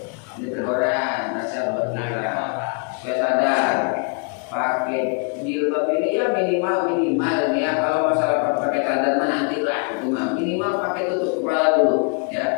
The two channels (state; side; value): quieter; right; 39.1 dB